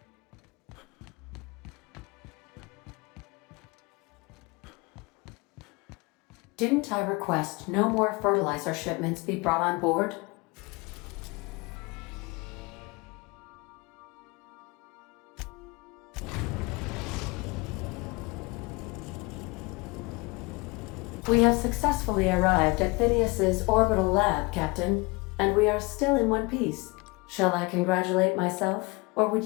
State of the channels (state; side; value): quieter; right; 25.8 dB